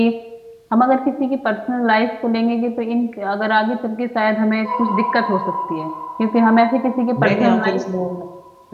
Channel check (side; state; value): both; identical; correlation 1.00